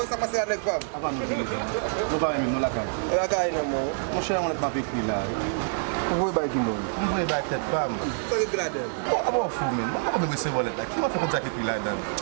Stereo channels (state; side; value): silent; left; digital silence